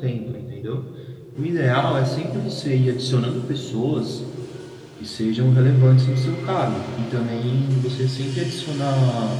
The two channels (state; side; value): identical; both; correlation 1.00